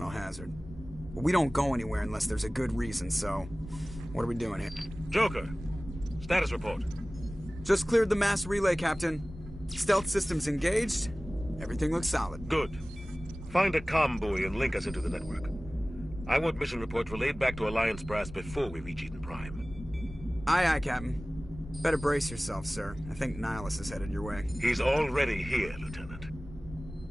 hazard. But we don't go anywhere unless there's a good reason, so... what are we doing here? Joker, status report. Just cleared the mass relay, Captain. Stealth systems engaged. Everything looks solid. Good. Find a comm buoy and link us into the network. I want mission reports relayed back to Alliance Brass before we reach Eden Prime. Aye, aye, Captain. Better brace yourself, sir. I think Nihilus is headed your way. He's already here, Lieutenant.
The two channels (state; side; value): normal; both; correlation 0.98